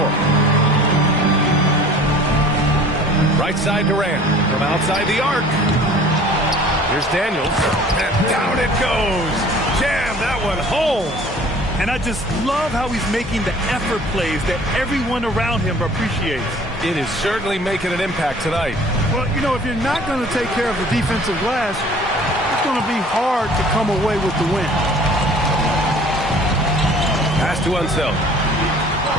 Right side Durant from outside the arc. Here's Daniels. And down it goes. Jam that one home. And I just love how he's making the effort plays that everyone around him appreciates. It is certainly making an impact tonight. Well, you know, if you're not going to take care of the defensive glass, it's going to be hard to come away with the win. Pass to Unseld.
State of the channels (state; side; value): normal; both; correlation 0.49